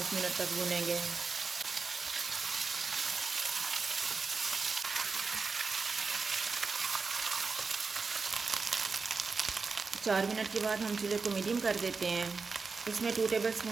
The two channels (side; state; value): left; quieter; 4.6 dB